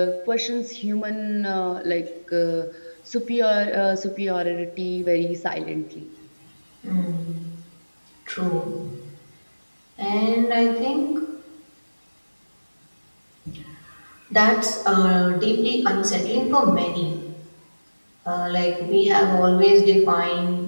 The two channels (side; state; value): both; inverted; correlation -1.00